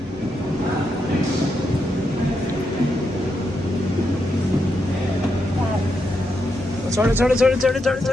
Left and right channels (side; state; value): both; normal; correlation 0.83